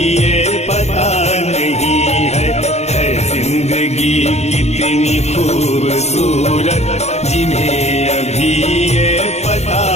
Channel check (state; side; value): late; right; 0.32 ms